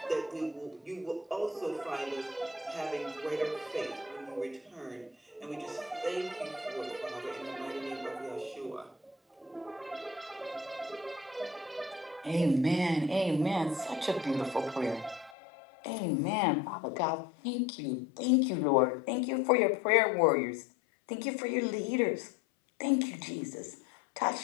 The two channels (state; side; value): drops out; right; at 15.4 s